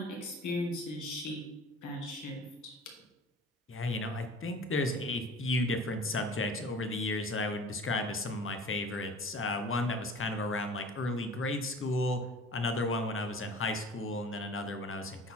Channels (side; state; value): both; normal; correlation 0.43